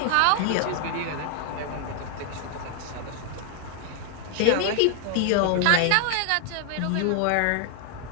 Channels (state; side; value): different; both; correlation 0.00